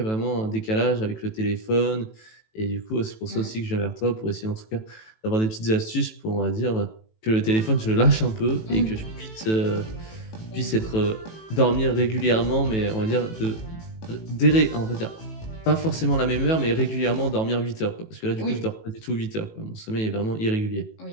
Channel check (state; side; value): late; right; 18 ms